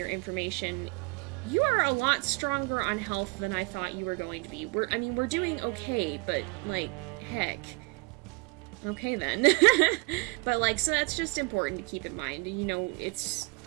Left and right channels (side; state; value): left; quieter; 28.0 dB